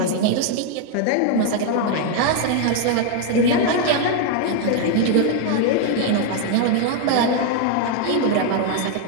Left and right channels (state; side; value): different; both; correlation 0.00